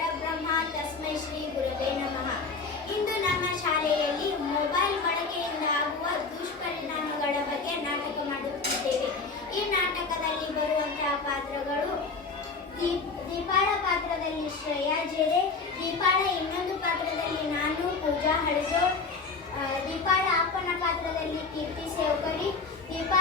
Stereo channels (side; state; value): right; quieter; 4.4 dB